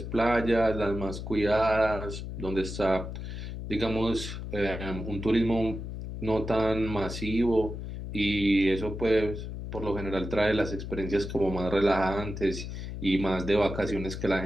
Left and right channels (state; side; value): noise; left; hum, 7 dB below the sound